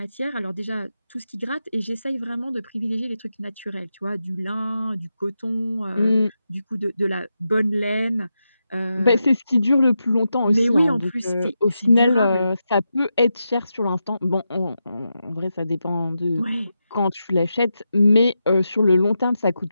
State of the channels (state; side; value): inverted; both; correlation -0.88